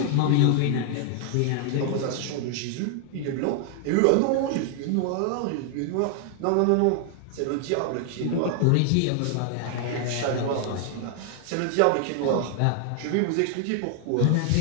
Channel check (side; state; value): both; different; correlation 0.00